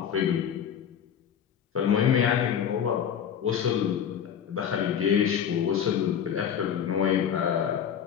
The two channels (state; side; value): quieter; right; 8.5 dB